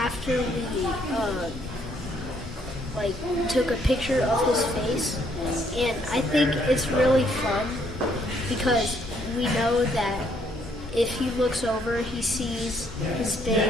we took a picture of his face, and I think it's really fun because we know that if he looks over, he sees his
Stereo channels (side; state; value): both; normal; correlation 0.68